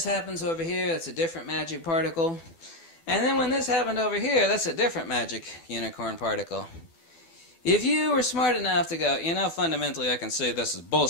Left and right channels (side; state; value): right; late; 12 ms